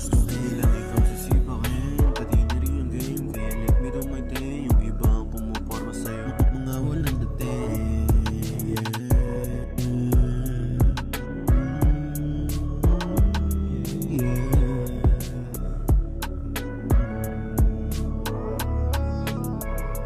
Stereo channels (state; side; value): identical; both; correlation 1.00